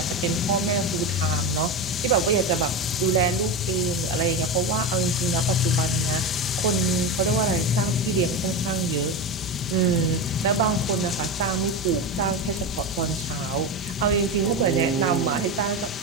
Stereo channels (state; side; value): normal; both; correlation 0.18